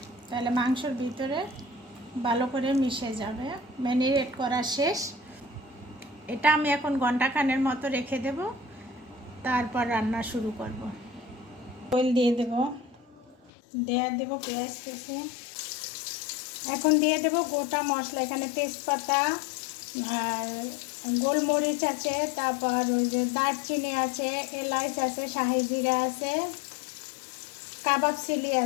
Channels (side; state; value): right; drops out; at 13.5 s